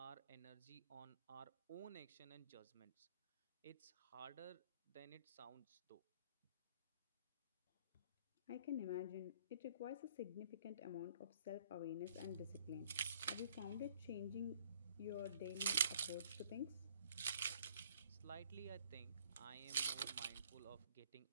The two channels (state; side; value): inverted; both; correlation -0.58